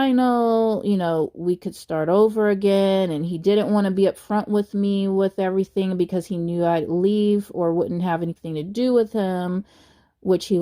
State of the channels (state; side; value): identical; both; correlation 1.00